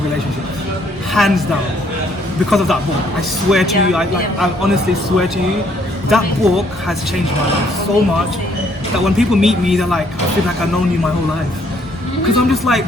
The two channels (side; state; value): both; normal; correlation 0.66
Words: relationships. Hands down. Because of that book. I swear to you, I honestly swear to you, that book has changed my life so much that when people meet me, they're like, I feel like I've known you my whole life. Because I'm just